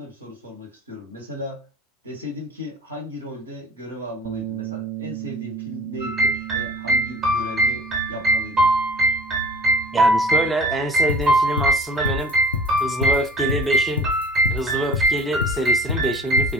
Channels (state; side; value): normal; both; correlation 0.46